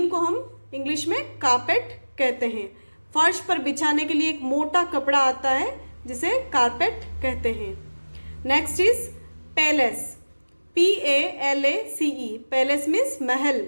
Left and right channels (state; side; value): inverted; both; correlation -1.00